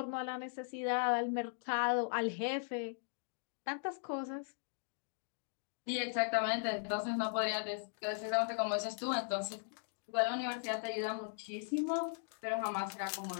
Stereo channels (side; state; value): right; silent; digital silence